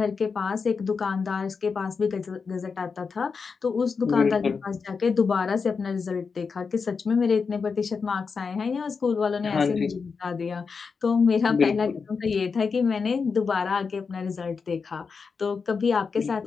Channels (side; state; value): right; quieter; 5.3 dB